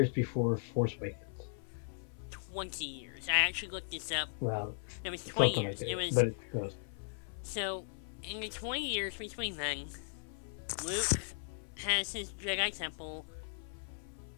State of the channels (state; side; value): silent; right; 53 dB below the other